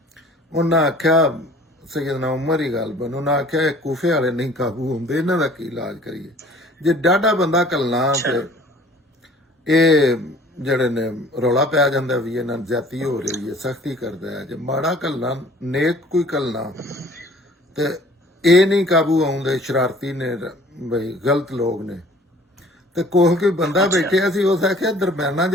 ਉਹਨਾਂ ਆਖਿਆ ਸੈਯਦਨਾ ਉਮਰ ਹੀ ਗੱਲ ਬਣ, ਉਹਨਾਂ ਆਖਿਆ ਇਹ ਕੂਫੇ ਵਾਲੇ ਨਹੀਂ ਕਾਬੂ ਹੁੰਦੇ, ਇਹਨਾਂ ਦਾ ਕੀ ਇਲਾਜ ਕਰੀਏ। ਜੇ ਡਾਢਾ ਬੰਦਾ ਕੱਲਣਾ ਤੇ ਇਹ ਜਿਹੜੇ ਨੇ ਰੌਲਾ ਪੈ ਜਾਂਦਾ ਵੀ ਇਹਨਾਂ ਨੂੰ ਜ਼ਿਆਦਤੀ ਹੋ ਰਹੀ ਹੈ, ਸਖਤੀ ਕਰਦਾ ਹੈ। ਜੇ ਮਾੜਾ ਕੱਲਣਾ ਨੇਕ ਕੋਈ ਕੱਲਣਾ ਤੇ ਇਹ ਨਹੀਂ ਕਾਬੂ ਆਉਂਦੇ, ਸ਼ਰਾਰਤੀ ਨੇ ਬਈ ਗਲਤ ਲੋਕ ਨੇ। ਤੇ ਕੋਹ ਕੋਈ ਬੰਦਾ ਬੈਠਿਆ ਸੀ, ਉਸ ਆਖਿਆ ਦਰਮਿਆਨਾ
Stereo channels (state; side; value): normal; both; correlation 0.51